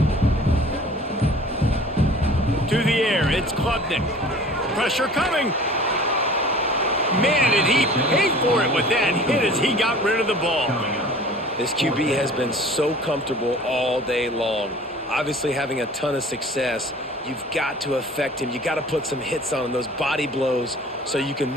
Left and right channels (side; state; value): both; normal; correlation 0.46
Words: To the air, it's Klubnik. Pressure coming. Man, did he pay for it with that hit as he got rid of the ball. This QB has been so comfortable all day long. Obviously having a ton of success. You've got to affect him. You've got to put some hits on him, those body blows, so you